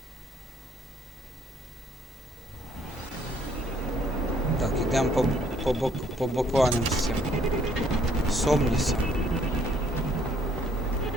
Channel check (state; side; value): normal; both; correlation 0.64